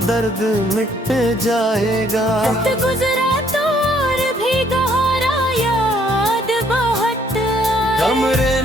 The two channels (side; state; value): both; normal; correlation 0.65